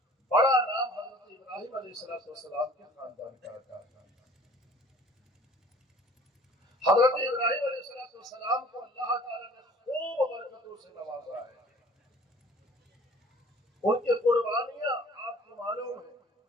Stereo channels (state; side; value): normal; both; correlation 0.50